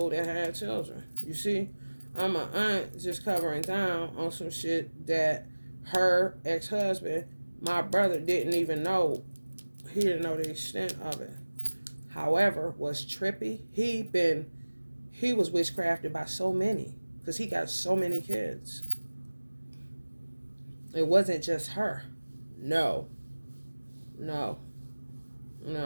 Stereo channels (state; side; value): inverted; both; correlation -1.00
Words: that had children. You see, I'm an aunt just covering down on some shit that her ex-husband, my brother, didn't even know. He didn't know the extent of it. However, was trippy. He was witchcrafted by so many, because he got so many kids. It wasn't just her. No. No.